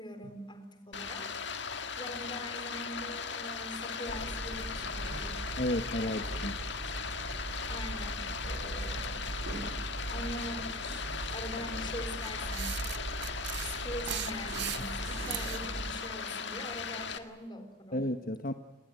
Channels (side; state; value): both; normal; correlation 0.32